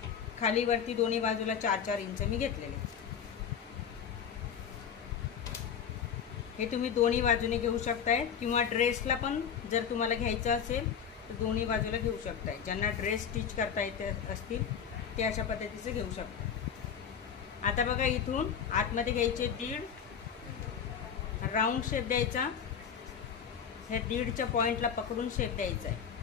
खाली वरती दोन्ही बाजूला 4-4 इंच मी घेतलेले. हे तुम्ही दोन्ही बाजूने घेऊ शकताय किंवा ड्रेसला पण जर तुम्हाला घ्यायचं असेल तर दोन्ही बाजूला घेऊ शकताय. ज्यांना ड्रेस स्टिच करता येते असतील ते अशा पद्धतीचं घेऊ शकता. आता बघा, इथून आतमध्ये घ्यायचे 1.5, राऊंड शेप द्यायचा. ह्या 1.5च्या पॉइंटला पकडून शेप द्यायचा आहे.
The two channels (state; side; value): quieter; right; 7.6 dB